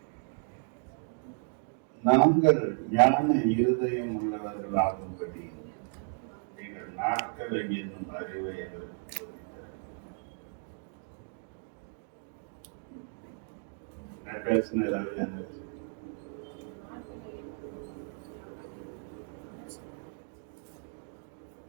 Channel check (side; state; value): left; silent; 56 dB below the other